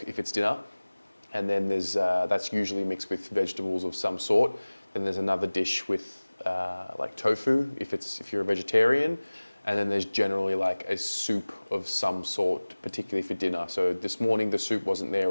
if it's dinner. And then there's that's usually mixed with vegetables of some sort. Then there's another dish with like tofu if you're a vegetarian. And then there's generally like a soup of some sort, particularly for dinner. So this morning the soup wasn't there. It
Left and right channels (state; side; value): inverted; both; correlation -1.00